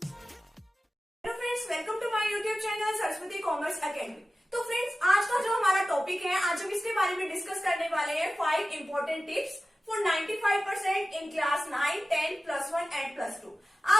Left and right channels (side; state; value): both; normal; correlation 0.95